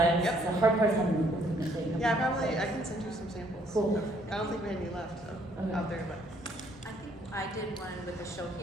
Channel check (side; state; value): both; normal; correlation 0.65